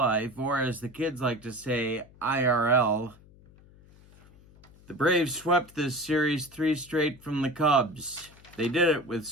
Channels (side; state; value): left; noise; hum, 25 dB below the sound